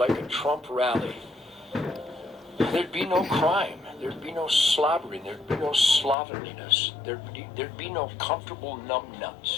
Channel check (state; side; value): drops out; right; at 6.2 s